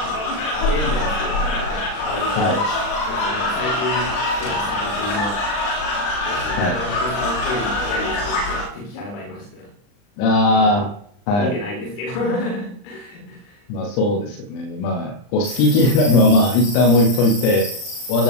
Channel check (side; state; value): right; late; 39 ms